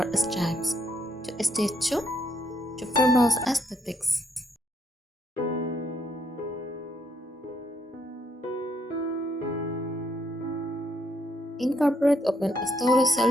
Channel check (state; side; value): normal; both; correlation 0.74